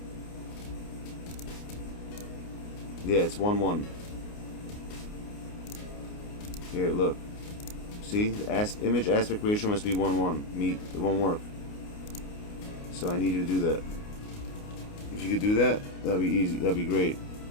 Yeah, it's 1:1. Here, look. See? The image aspect ratio must be 1:1. Meet. It won't work. So I need you to do that. If you could do that, that'd be easy. That'd be great.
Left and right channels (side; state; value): right; late; 29 ms